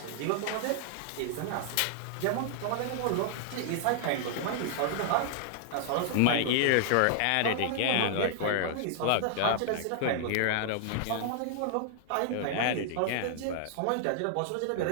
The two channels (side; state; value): both; different; correlation -0.01